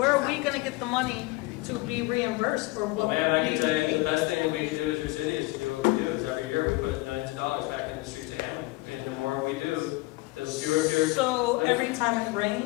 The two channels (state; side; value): quieter; right; 21.8 dB